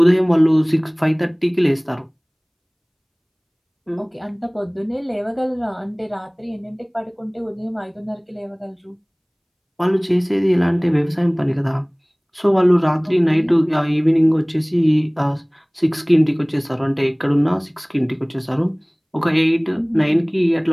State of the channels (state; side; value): identical; both; correlation 1.00